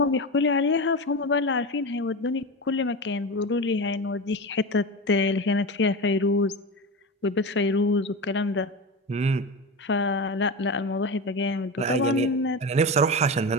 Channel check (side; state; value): both; normal; correlation 0.23